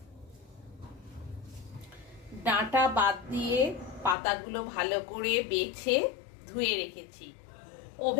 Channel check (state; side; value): drops out; right; at 4.2 s